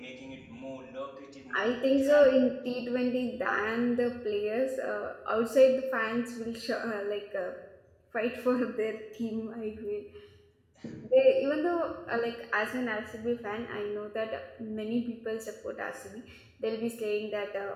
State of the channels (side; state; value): both; identical; correlation 1.00